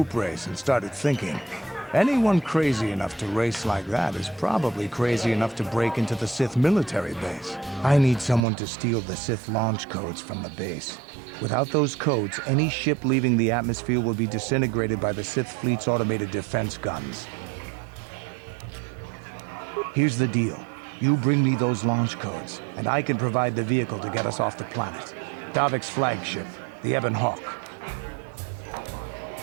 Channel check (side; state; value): left; drops out; at 8.5 s